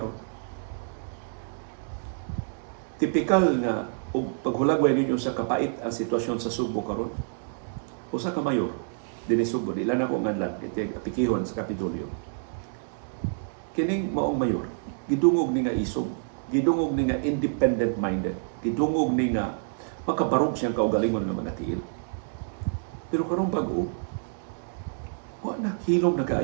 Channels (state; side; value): silent; left; 60 dB below the other